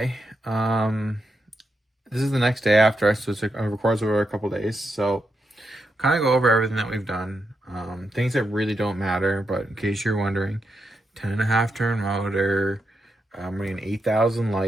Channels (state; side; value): normal; both; correlation 0.84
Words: This is the next day after, so it records over a couple days. So kind of go over everything that we've done. Things that really don't matter, but in case you're wondering, 10.5 turn motor. I'm running an 8000